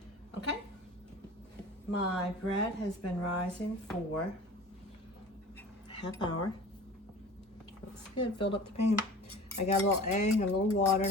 Okay. My bread has been rising for half hour. Looks good. Filled up the pan. I got a little egg and a little water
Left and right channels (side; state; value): both; normal; correlation 0.40